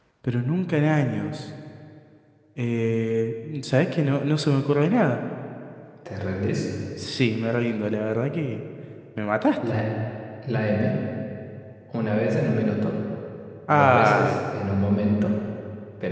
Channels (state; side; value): identical; both; correlation 1.00